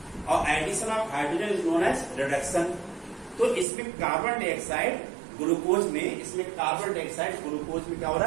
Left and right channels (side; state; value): left; drops out; at 3.7 s